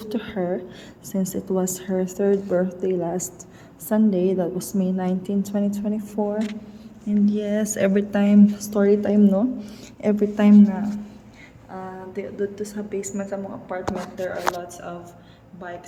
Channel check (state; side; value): identical; both; correlation 1.00